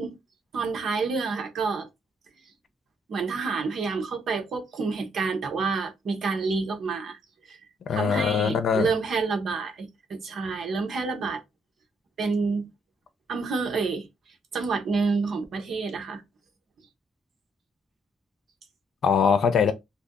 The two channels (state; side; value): normal; both; correlation 0.70